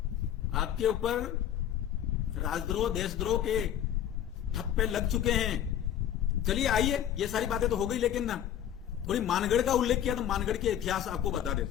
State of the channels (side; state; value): right; quieter; 10.5 dB